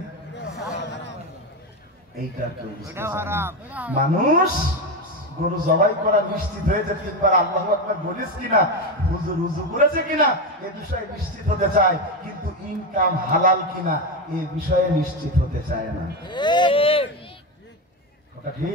এইটার কেউ বুঝতে পারে না। মানুষ গরু জবাই করা নিশ্চিত হয়েছে, তিনবার আল্লাহু আকবার বলিস কিনা, হুজুর রুজু করেছে কিনা, এ বিষয়ে নিশ্চিত হতে চায়, কিন্তু ইনকাম হালাল কিনা এ বিষয়ে নিশ্চিত হতে চায় না। ওটা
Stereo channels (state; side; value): normal; both; correlation 0.14